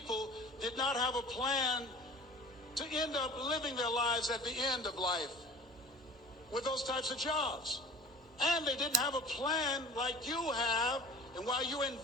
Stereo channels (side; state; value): both; normal; correlation 0.43